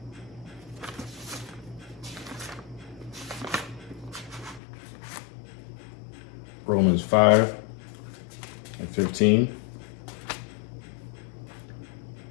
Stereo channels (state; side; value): drops out; right; at 4.6 s